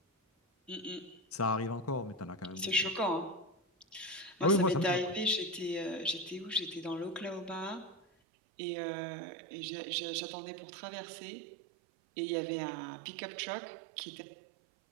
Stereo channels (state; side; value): drops out; left; at 8.1 s